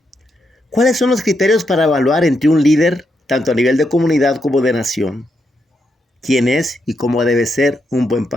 ¿Cuáles son los criterios para evaluar entre un líder, tanto a nivel de comunidad como de nación? ¿Quién es y cómo debe ser un buen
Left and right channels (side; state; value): both; normal; correlation 0.81